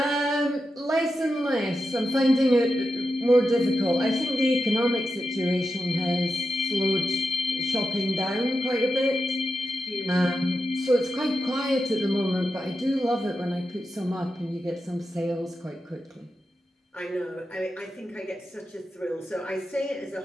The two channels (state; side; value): normal; both; correlation 0.89